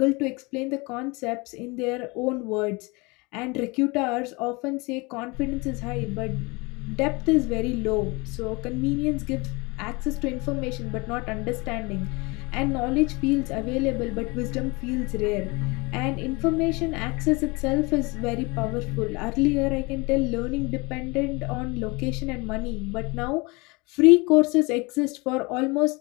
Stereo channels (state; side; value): quieter; right; 26.6 dB